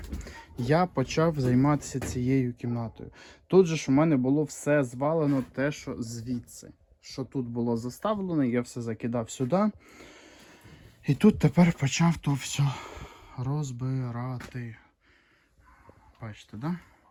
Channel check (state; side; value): identical; both; correlation 1.00